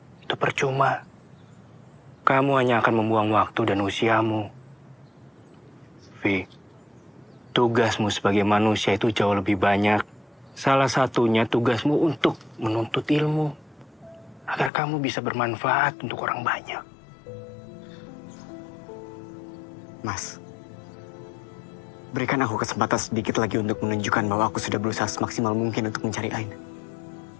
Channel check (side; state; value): right; drops out; at 14.7 s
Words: itu percuma. Kamu hanya akan membuang waktu dan usiamu. Vi, tugasmu sebagai manusia itu jauh lebih banyak. Salah satunya tugasmu untuk menuntut ilmu. Agar kamu bisa bermanfaat untuk orang banyak. Mas, berikan aku kesempatan sedikit lagi untuk menunjukkan bahwa aku sudah berusaha semaksimal mungkin untuk mencari Aina.